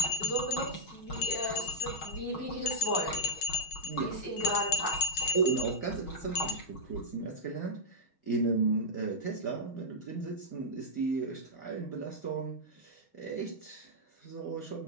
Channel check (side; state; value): right; late; 6.2 ms